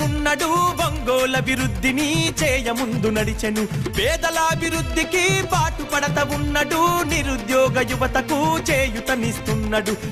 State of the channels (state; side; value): identical; both; correlation 1.00